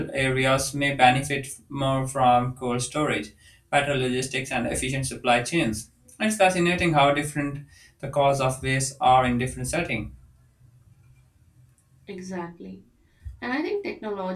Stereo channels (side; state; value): both; identical; correlation 1.00